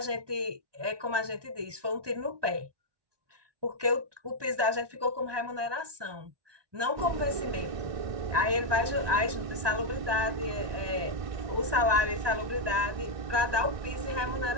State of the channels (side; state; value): left; late; 1.2 ms